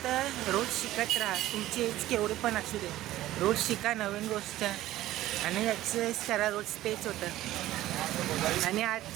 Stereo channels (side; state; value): left; quieter; 15.0 dB